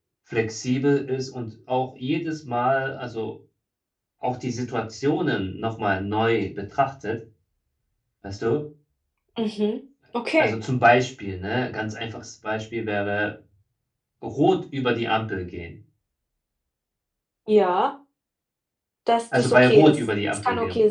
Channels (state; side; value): identical; both; correlation 1.00